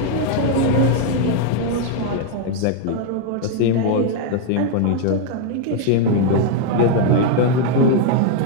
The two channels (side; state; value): both; different; correlation 0.00